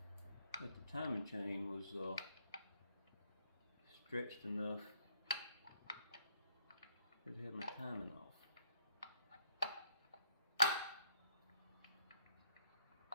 that the timing chain was stretched enough that it had my timing off.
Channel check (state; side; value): inverted; both; correlation -0.67